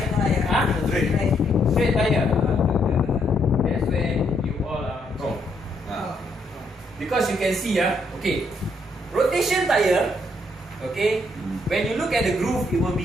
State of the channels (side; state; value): both; normal; correlation 0.73